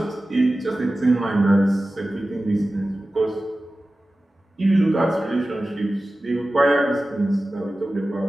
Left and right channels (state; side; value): normal; both; correlation 0.95